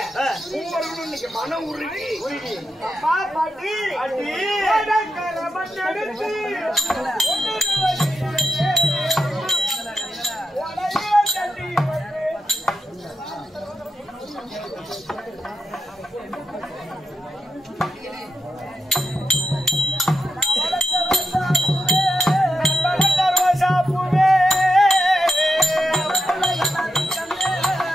மூவர்களும் இன்னைக்கு மனம் உருகி அப்பா பாட்டி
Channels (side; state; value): both; normal; correlation 0.86